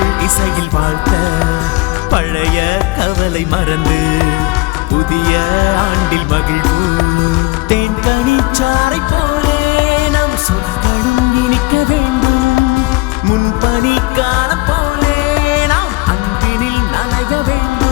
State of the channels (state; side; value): quieter; right; 22.6 dB